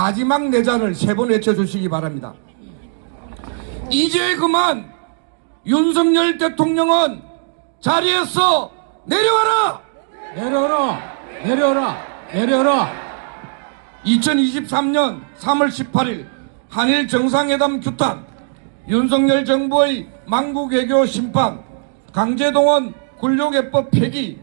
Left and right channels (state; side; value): silent; left; digital silence